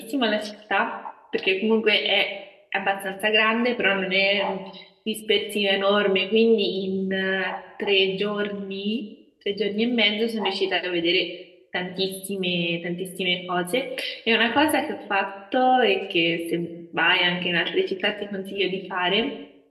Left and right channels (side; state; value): both; identical; correlation 1.00